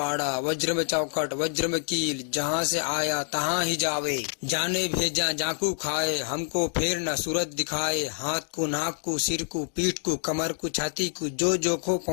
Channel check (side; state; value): right; silent; 60 dB below the other